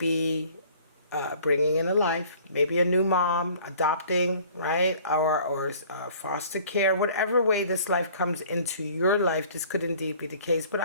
bringing in a life, maybe a new mom, adopting, right? Or foster care, whatever way this life comes into your life, this could indeed be the case. But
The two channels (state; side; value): inverted; both; correlation -0.52